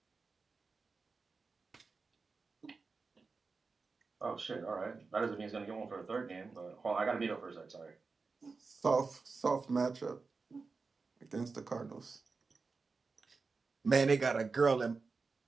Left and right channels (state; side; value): quieter; left; 4.4 dB